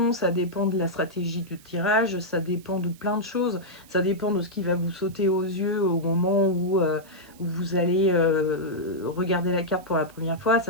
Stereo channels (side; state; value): right; noise; hiss, 25 dB below the sound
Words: ça dépend de la stratégie du tirage, ça dépend de plein de choses, ça dépend de ce qui va vous sauter aux yeux au moment où vous allez regarder la carte pour la première fois,